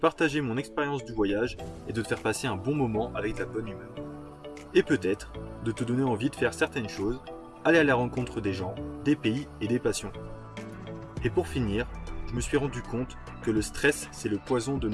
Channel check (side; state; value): both; identical; correlation 1.00